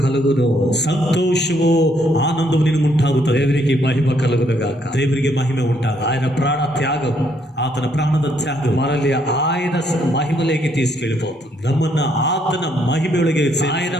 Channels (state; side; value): normal; both; correlation 0.71